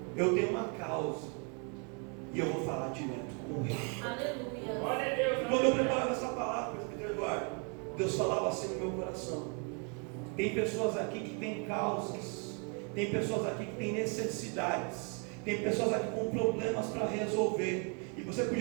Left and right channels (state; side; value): quieter; left; 37.3 dB